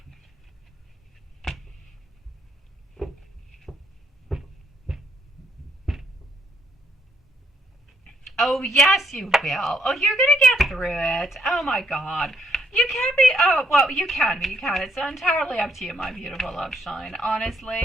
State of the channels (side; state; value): both; normal; correlation 0.72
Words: Oh, yes, you will. Oh, you're going to get through it. Oh, my God. You can be. Oh, well, you can be. You can. It's entirely up to you, my beautiful Love Shine,